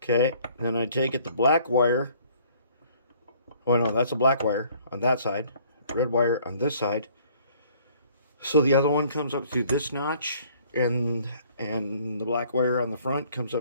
Okay. Then I take it, the black wire. Oh no, that's a black wire on that side. Red wire on this side. So the other one comes up through this notch, and the black wire on the front comes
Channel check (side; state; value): both; inverted; correlation -0.58